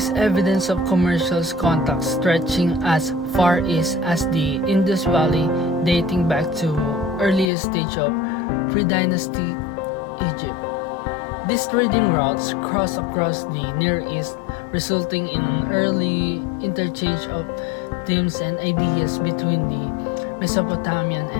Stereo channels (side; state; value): right; drops out; at 7.5 s